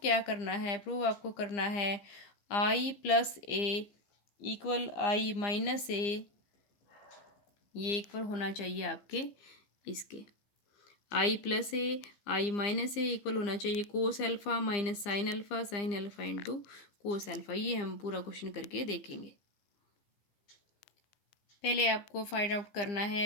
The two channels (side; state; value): right; late; 15 ms